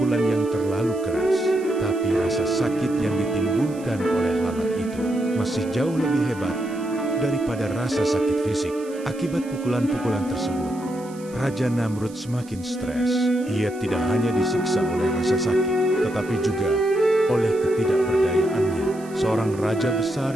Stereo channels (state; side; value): noise; right; hiss, 22 dB below the sound